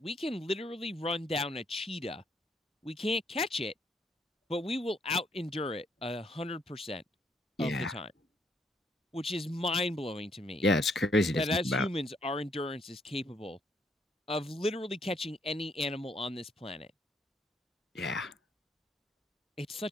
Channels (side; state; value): both; normal; correlation 0.71